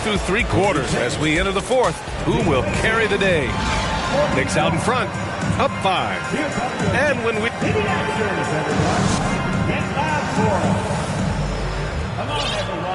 through 3 quarters as we enter the fourth. Who will carry the day? Knicks out in front, up 5. And when we...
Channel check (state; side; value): identical; both; correlation 1.00